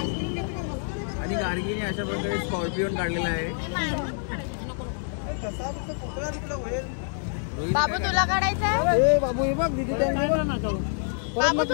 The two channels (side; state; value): right; silent; digital silence